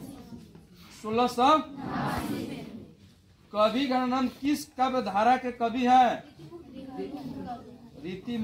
1600। कवि घनानंद किस काव्य धारा के कवि हैं? रीति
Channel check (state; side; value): identical; both; correlation 1.00